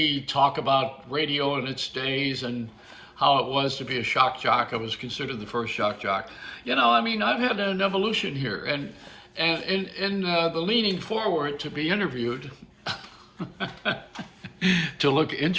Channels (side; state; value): both; identical; correlation 1.00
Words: talk about radio in its days and how it was to be a shock jock. I was considered the first shock jock. I've had an evolution here, and in the leaning forward to be interviewed, to look